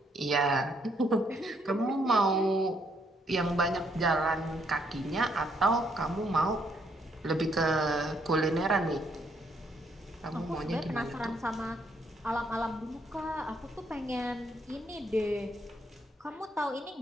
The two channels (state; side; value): normal; both; correlation 0.72